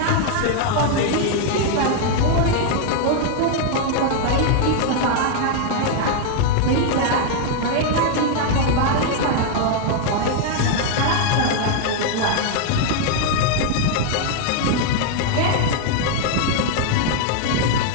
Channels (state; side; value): different; both; correlation 0.00